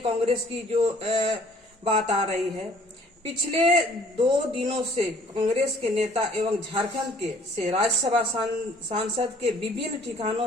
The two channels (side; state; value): both; normal; correlation 0.57